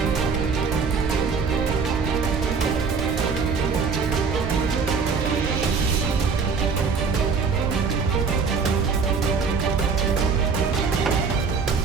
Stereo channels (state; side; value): quieter; left; 5.3 dB